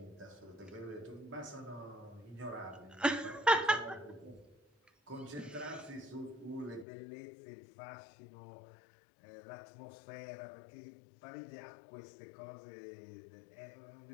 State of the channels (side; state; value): right; drops out; at 6.9 s